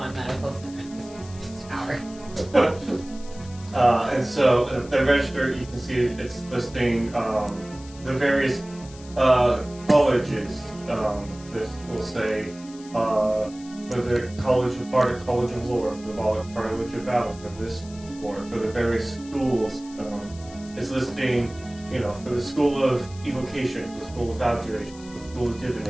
medical center. This is tower. And so the register, you can see it's listing the various colleges. This will say for the College of Art, College of Lore, for the College of Valor, for this floor, for the various schools. It's listing, for the School of Evocation, for the School of Abjuration, for the School of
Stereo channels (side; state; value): left; noise; hiss, 20 dB below the sound